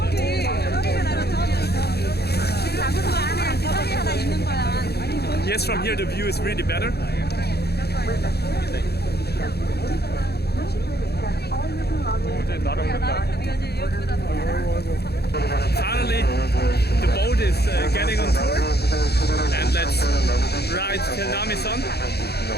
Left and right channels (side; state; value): right; late; 0.47 ms